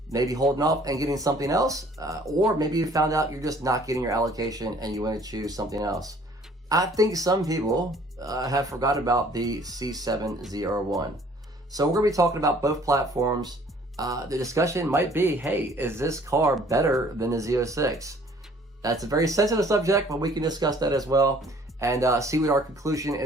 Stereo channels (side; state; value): both; normal; correlation 0.56